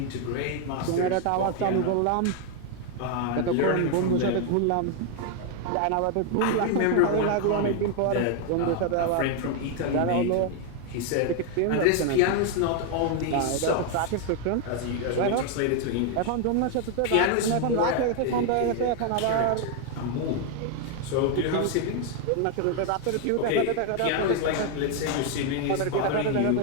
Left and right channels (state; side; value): different; both; correlation 0.00